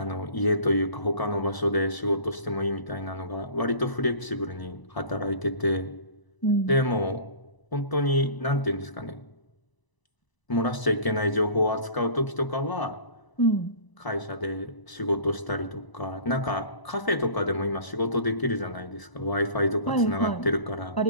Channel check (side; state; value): right; late; 1.0 ms